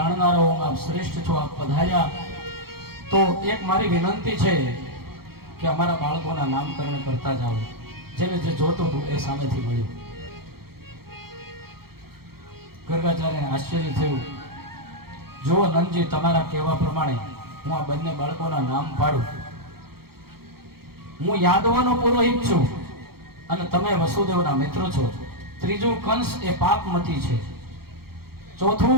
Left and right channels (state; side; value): late; left; 0.94 ms